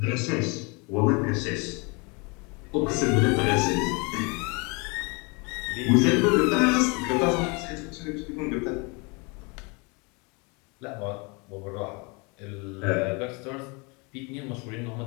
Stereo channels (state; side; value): quieter; right; 30.1 dB